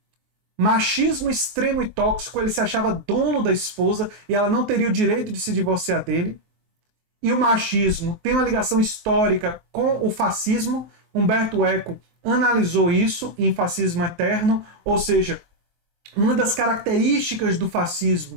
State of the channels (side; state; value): left; late; 23 ms